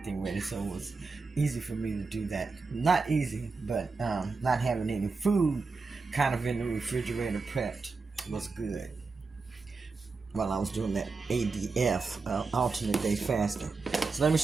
ready, so it was easy for me to do that. Not easy, but not having any food kind of in the refrigerator prepped was good while I was doing that ADF, alternate day fasting. So let me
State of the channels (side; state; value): left; quieter; 4.3 dB